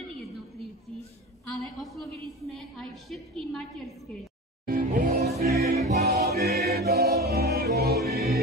jednotlivci, ale oslovili sme aj všetky materské.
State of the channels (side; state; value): both; normal; correlation 0.30